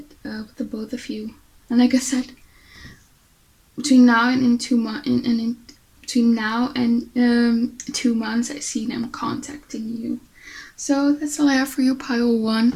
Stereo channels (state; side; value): identical; both; correlation 1.00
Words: with the both of you. And like I said, between now and in 2 months, between now and 2 months, I see them contacting you. So that's all I have for you, pile 1.